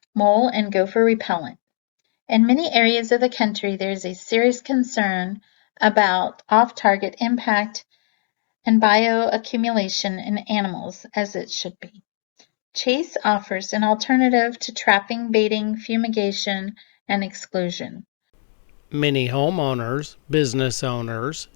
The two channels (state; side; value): silent; right; digital silence